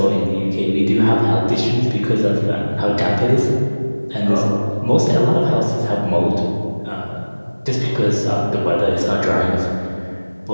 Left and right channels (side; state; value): both; inverted; correlation -1.00